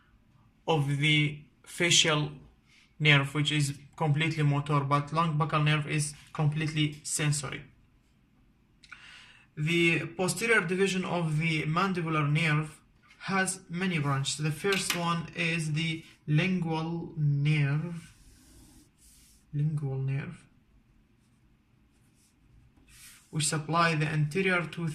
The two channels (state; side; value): identical; both; correlation 1.00